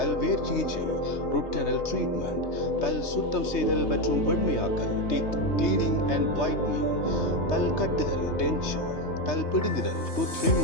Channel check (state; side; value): late; right; 3.3 ms